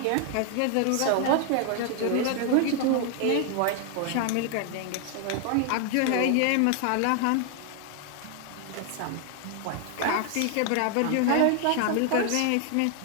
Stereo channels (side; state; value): both; different; correlation 0.00